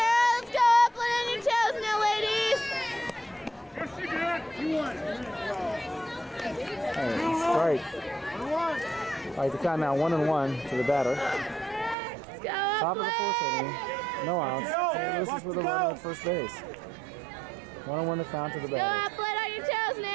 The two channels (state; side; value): drops out; left; at 12.0 s